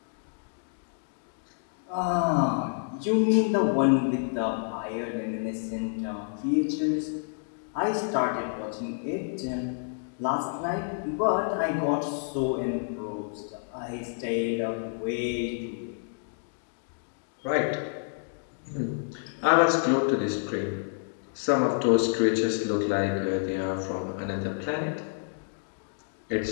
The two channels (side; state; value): right; silent; digital silence